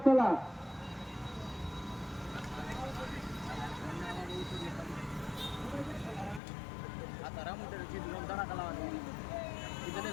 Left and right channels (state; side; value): drops out; right; at 6.4 s